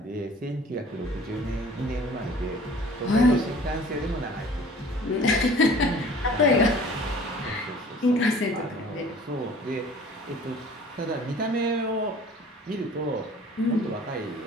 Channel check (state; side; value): normal; both; correlation 0.48